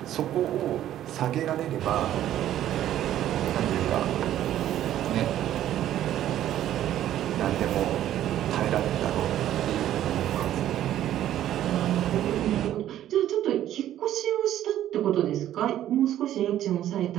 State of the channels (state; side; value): quieter; left; 12.1 dB